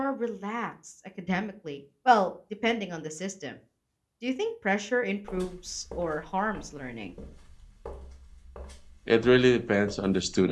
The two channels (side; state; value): both; identical; correlation 1.00